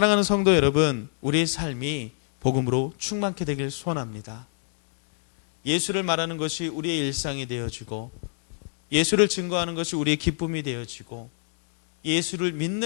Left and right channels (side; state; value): right; silent; digital silence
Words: 성도 여러분, 우리의 삶이 복음으로 충만케 되길 소원합니다. 예수를 말하는 것이 우리의 일상이 되어지고, 예수를 증거하는 것이 우리의 기쁨이 되어지고, 예수를